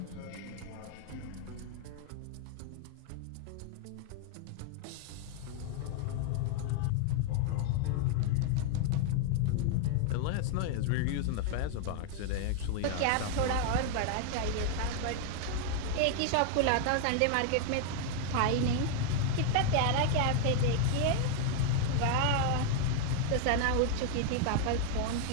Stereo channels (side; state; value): both; different; correlation 0.00